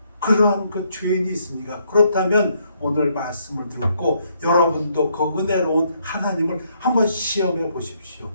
그러한 그 죄인이 있습니까? 그렇다면 오늘 말씀을 듣고 여러분도 그 은혜로운 하나님을 한번 시험해 보십시오.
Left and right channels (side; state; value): both; inverted; correlation -0.72